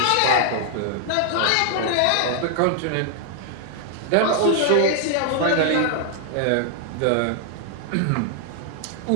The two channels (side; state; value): both; different; correlation 0.00